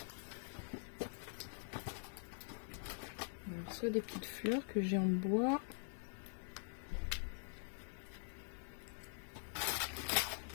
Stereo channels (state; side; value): silent; right; digital silence